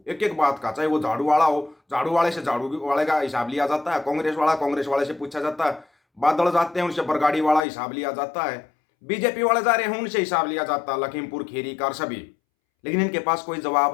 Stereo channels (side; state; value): right; drops out; at 7.6 s